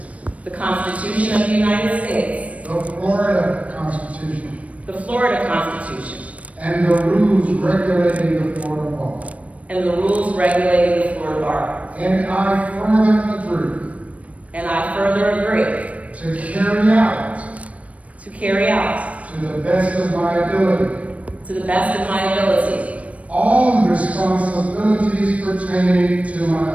the Constitution of the United States, the Florida Constitution, the Florida Constitution, and the rules regulating the Florida Bar. and the rules regulating the Florida Bar. And I further agree And I further agree to carry out, to carry out, to the best of my ability, to the best of my ability, all responsibilities pertaining to my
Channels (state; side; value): late; left; 0.066 ms